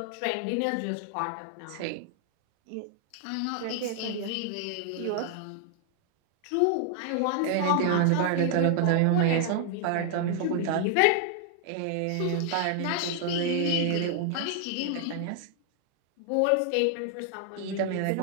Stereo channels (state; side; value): different; both; correlation 0.00